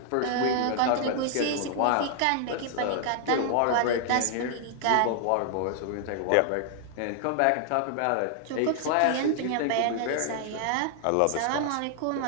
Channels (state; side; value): different; both; correlation 0.00